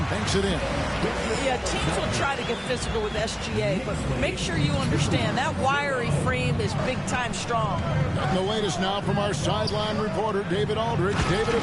banks it in. Yeah, teams will try to get physical with SGA, but make sure you understand that wiry frame is big-time strong. And the latest now from our sideline reporter, David Aldridge. David,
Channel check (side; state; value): both; identical; correlation 1.00